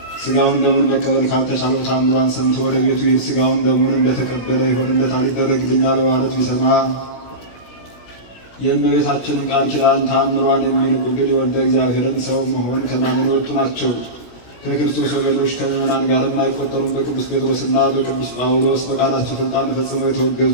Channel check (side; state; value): right; late; 16 ms